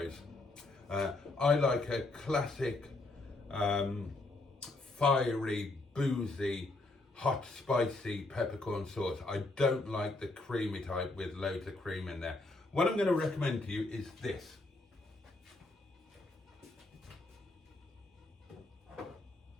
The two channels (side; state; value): right; quieter; 3.0 dB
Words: I like a classic, fiery, boozy, hot, spicy peppercorn sauce. I don't like the creamy type with loads of cream in there. What I'm going to recommend to you is this.